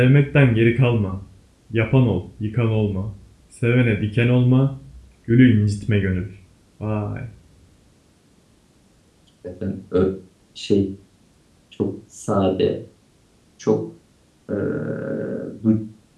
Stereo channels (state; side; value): identical; both; correlation 1.00